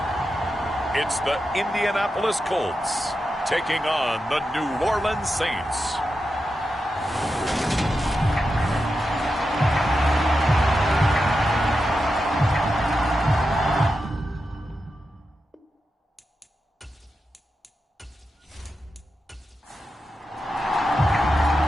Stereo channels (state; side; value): normal; both; correlation 0.89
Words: It's the Indianapolis Colts taking on the New Orleans Saints.